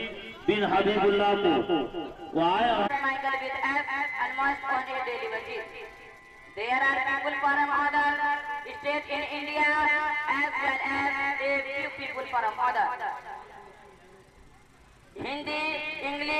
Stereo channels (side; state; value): both; identical; correlation 1.00